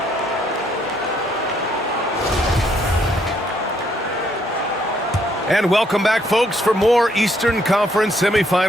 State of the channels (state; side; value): normal; both; correlation 0.70